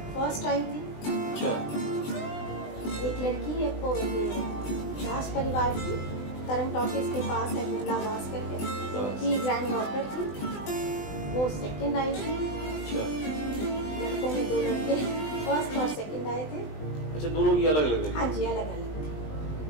फर्स्ट आई थी। अच्छा। एक लड़की है वो ये दास परिवार की, तरंग टॉकीज के पास है, बिमला दास करके, उनकी ग्रैंड डॉटर थी, वो सेकंड आई थी। अच्छा। लड़कों में 2 लड़के फर्स्ट और सेकंड आए थे। अच्छा, दोनों की अलग अलग? हाँ जी, अलग अलग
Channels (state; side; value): late; right; 20 ms